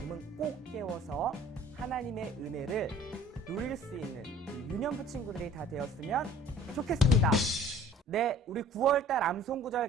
꼭 깨워서 하나님의 은혜를 누릴 수 있는 유년부 친구들이 다 되었으면 좋겠습니다. 네, 우리 9월달 암송구절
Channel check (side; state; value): both; normal; correlation 0.51